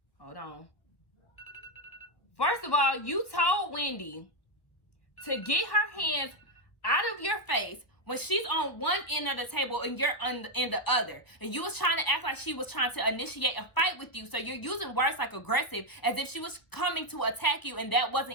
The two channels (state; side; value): late; right; 1.2 ms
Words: Wendy to get her hands out of your face when she's on one end of the table and you're on the other, and you was trying to act like she was trying to initiate a fight with you, so you're using words like aggressive as if she was coming to attack you, and that